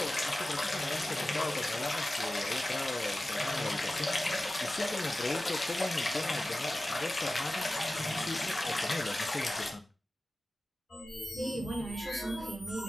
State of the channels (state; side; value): normal; both; correlation 0.95